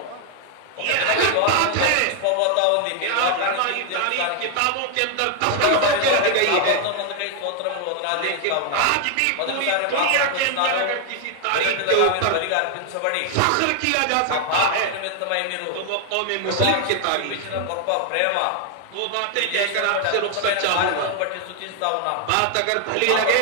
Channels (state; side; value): different; both; correlation 0.00